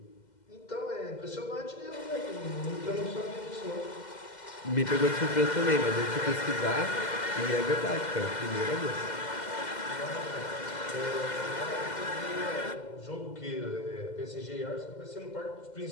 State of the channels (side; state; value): right; late; 2.0 ms